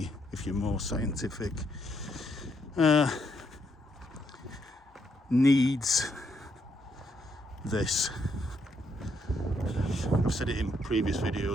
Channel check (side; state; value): both; normal; correlation 0.75